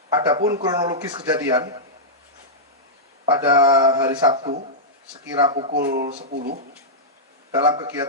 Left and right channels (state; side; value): normal; both; correlation -0.11